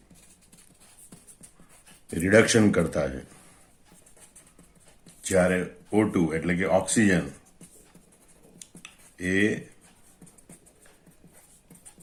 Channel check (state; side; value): identical; both; correlation 1.00